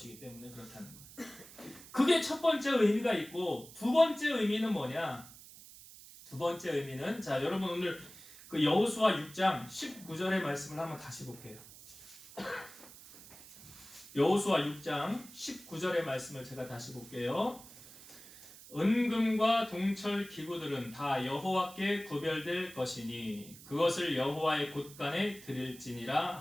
때문에 그렇다는 거예요. 그게 첫 번째 의미가 있고 두 번째 의미는 뭐냐? 두 번째 의미는 여러분 오늘 그 여호수아 6장 19절의 말씀을 한번 다시 볼게요. 여호수아 6장 19절의 말씀을 제가 다시 볼게요. 은금과 동철 기구들은 다 여호와께 구별될 것이니 그것을 여호와의 곳간에 드릴지니라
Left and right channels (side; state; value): right; noise; hiss, 18 dB below the sound